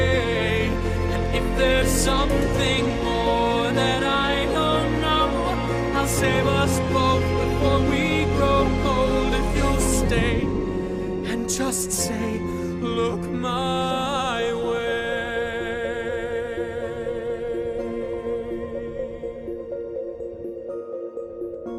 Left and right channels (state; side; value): identical; both; correlation 1.00